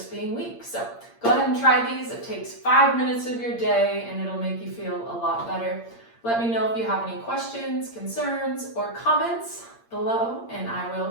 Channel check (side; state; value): right; late; 8.6 ms